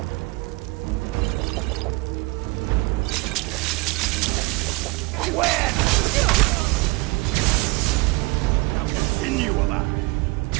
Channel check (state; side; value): quieter; left; 24.7 dB